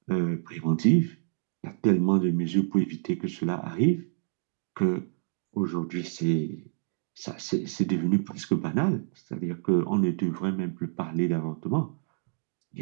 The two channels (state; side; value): silent; left; digital silence